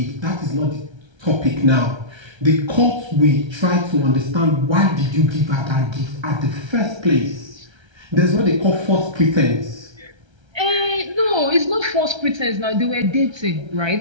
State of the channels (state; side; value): late; left; 1.3 ms